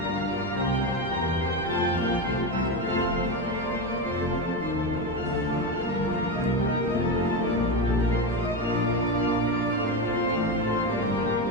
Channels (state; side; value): normal; both; correlation 0.16